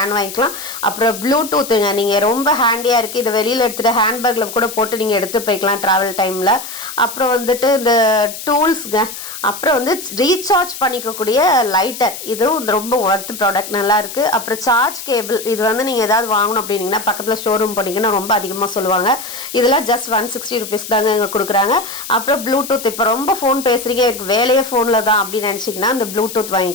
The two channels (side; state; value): left; noise; hiss, 10 dB below the sound